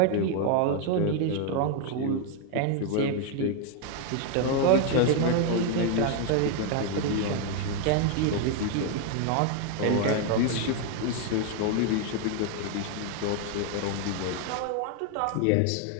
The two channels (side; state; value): both; different; correlation 0.01